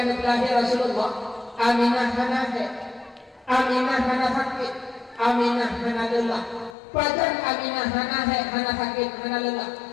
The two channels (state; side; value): drops out; right; at 6.8 s